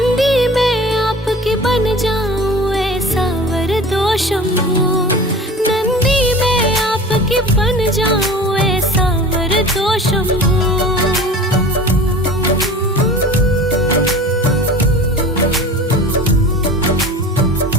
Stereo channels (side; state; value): both; normal; correlation 0.38